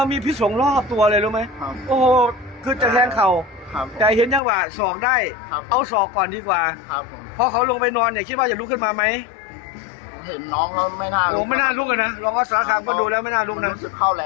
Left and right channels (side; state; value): right; drops out; at 4.4 s